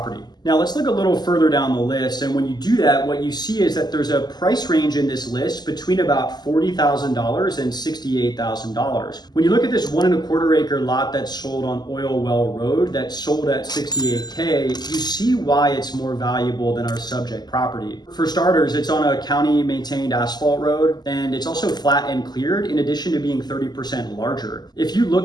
Now let's look a little further down the list, and when you do that, what you see is that there's a price range in this list between about $40,000 and $68,000. When you look at this 1.25 acre lot that sold on Oil Well Road that sold at $68K, you see why it's more valuable than our subject property. For starters, it's on a county maintained asphalt road, and it's also flat and cleared in addition to being 30% larger. If you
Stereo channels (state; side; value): late; right; 0.20 ms